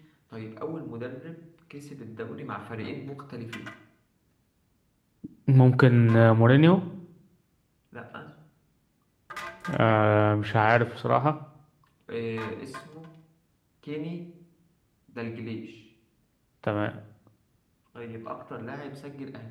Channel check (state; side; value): identical; both; correlation 1.00